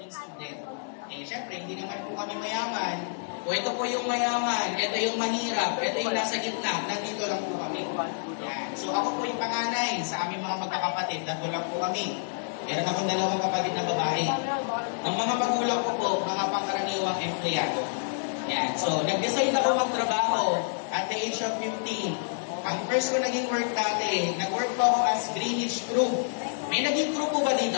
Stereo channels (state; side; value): silent; right; digital silence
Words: student. Eh, syempre, hindi naman po kami mayaman. O ito po yung mayaman, ito yung mahirap, ito yung nasa gitna, nandito lang po kami. Yan. So, ako po yung panganay sa aming mga magkakapatid, nandito lang po kami. Meron akong dalawang kapatid na babae. Ang mga magulang ko po, mga pangkaraniwang empleyado. Yan. So, nag-decide ako magtrabaho at the age of 15. Ang first ko naging work dati, nag-work po ako as Greenwich crew. May naging crew po ba